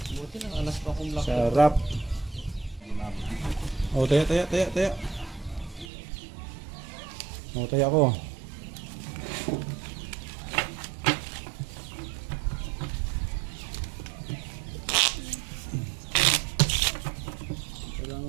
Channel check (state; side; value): drops out; left; at 5.9 s